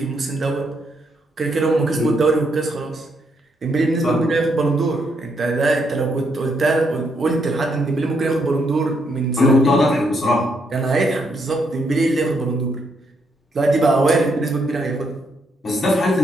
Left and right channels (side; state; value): both; normal; correlation 0.76